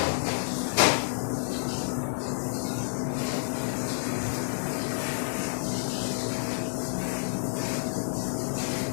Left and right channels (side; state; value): right; silent; digital silence